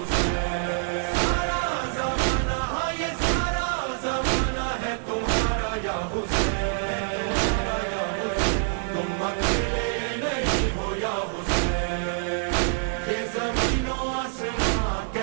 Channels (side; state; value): left; silent; digital silence